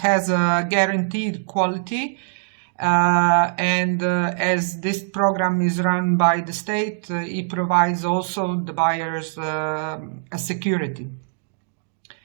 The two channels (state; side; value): silent; left; digital silence